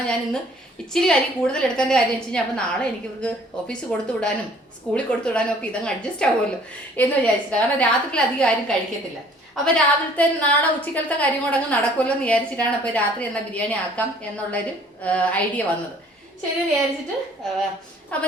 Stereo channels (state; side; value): normal; both; correlation 0.56